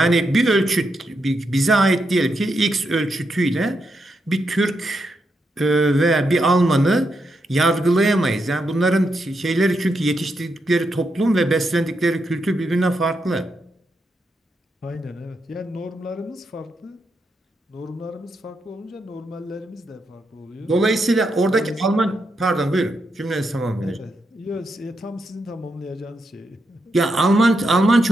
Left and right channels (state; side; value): normal; both; correlation 0.83